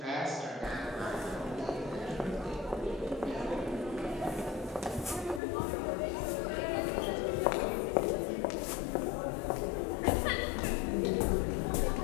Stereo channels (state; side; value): drops out; right; at 5.4 s